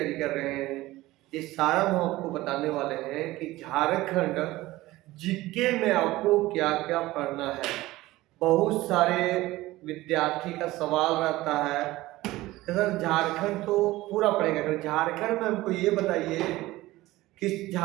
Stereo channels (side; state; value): left; quieter; 17.9 dB